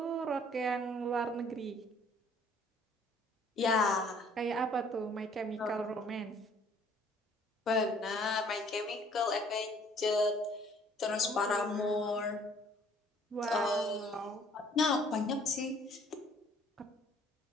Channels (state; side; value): normal; both; correlation 0.58